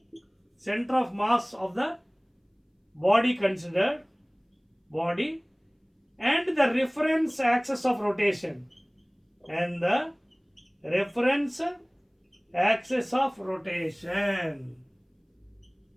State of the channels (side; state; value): both; identical; correlation 1.00